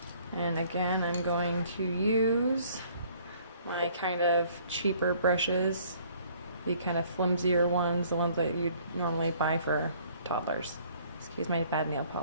And again, I'm going to use my kind of cheaper brushes, the kind of flimsier ones, the ones that you'd normally buy for toddlers. Excuse my bad nail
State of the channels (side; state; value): both; inverted; correlation -0.59